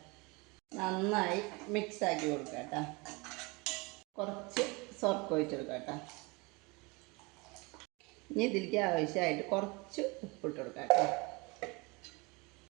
നന്നായി മിക്സാക്കി കൊടുക്കുക കേട്ടോ. കുറച്ച് സോർക്ക് ഒഴിച്ച് കൊടുക്കുക കേട്ടോ. ഇനി ഇതിലേക്ക് ആവശ്യമായിട്ട് കുറച്ച് ഉപ്പിട്ട് കൊടുക്കുക കേട്ടോ.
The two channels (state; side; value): quieter; left; 26.8 dB